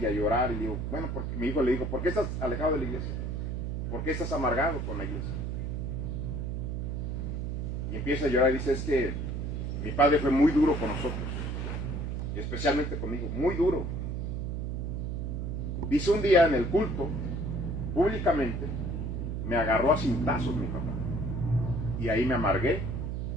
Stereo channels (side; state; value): right; noise; hum, 3 dB below the sound